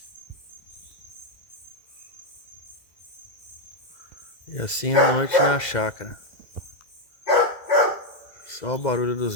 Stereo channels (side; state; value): right; late; 2.0 ms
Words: E assim a noite na chácara. Só o barulho dos